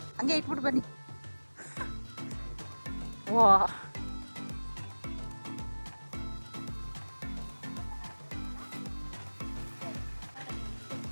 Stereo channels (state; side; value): inverted; both; correlation -1.00